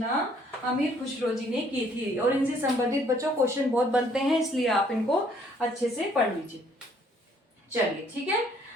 अमीर खुसरो जी ने की थी और इनसे संबंधित बच्चों क्वेश्चन बहुत बनते हैं, इसलिए आप इनको अच्छे से पढ़ लीजिए। चलिए ठीक है।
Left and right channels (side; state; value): both; normal; correlation 0.63